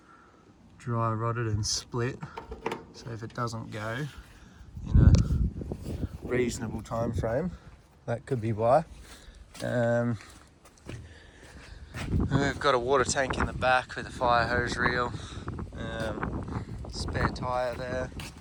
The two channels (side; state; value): both; identical; correlation 1.00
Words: dry rotted and split. So if it doesn't go in a reasonable time frame, that could be why. We've got a water tank in the back with a fire hose reel, spare tyre there.